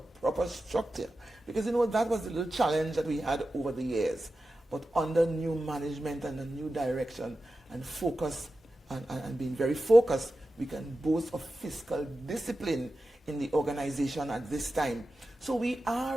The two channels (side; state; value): both; normal; correlation 0.93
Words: proper structure. Because you know, that was the little challenge that we had over the years. But under new management and a new direction and focus and being very focused, we can boast of fiscal discipline in the organization at this time. So we